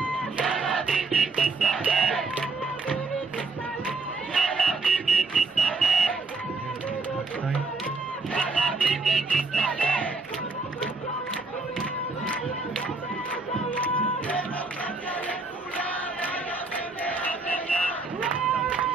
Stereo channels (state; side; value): quieter; left; 3.7 dB